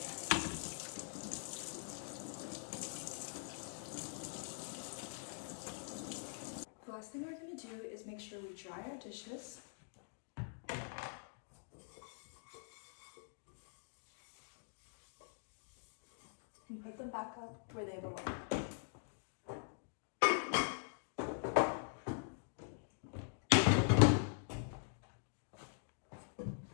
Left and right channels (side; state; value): right; silent; digital silence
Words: The last thing we're going to do is make sure we dry our dishes. and put them back up where they belong.